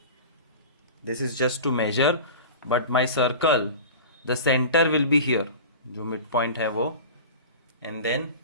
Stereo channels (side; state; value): both; inverted; correlation -0.34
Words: This is just to measure, but my circle, the center will be here. जो mid point है वो, and then